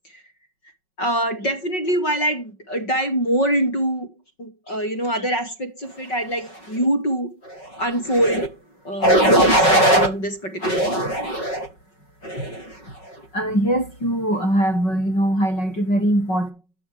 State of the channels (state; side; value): late; right; 5.4 ms